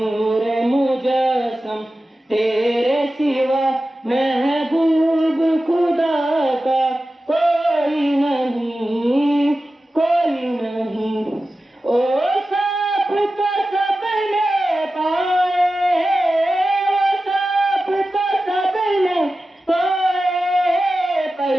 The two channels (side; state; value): both; normal; correlation 0.94